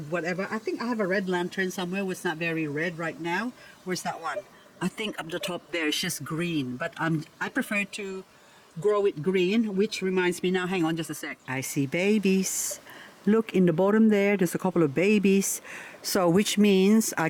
whatever. I think I have a red lantern somewhere. It's not very red right now. Where's that one? I think up the top there it's just green, but I prefer to grow it green, which reminds me now, hang on just a sec. I see babies. Look in the bottom there, there's a couple of babies. So which means I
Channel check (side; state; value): both; identical; correlation 1.00